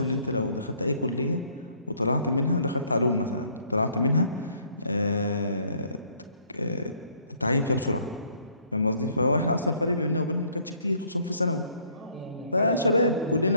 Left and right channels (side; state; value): both; inverted; correlation -0.62